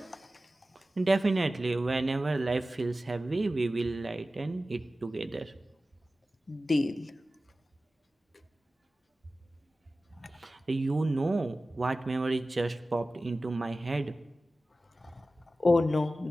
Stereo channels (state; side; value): normal; both; correlation 0.95